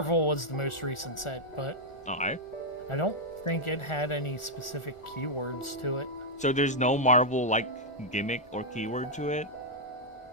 was the most recent set, but I don't think it had any specific keywords to it. So there's no Marvel like gimmick or keyword to it?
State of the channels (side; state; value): right; late; 1.4 ms